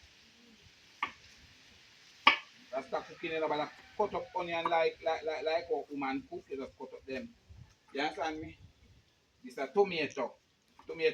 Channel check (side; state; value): both; identical; correlation 1.00